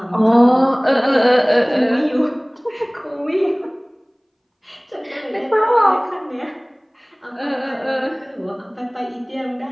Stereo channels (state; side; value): identical; both; correlation 1.00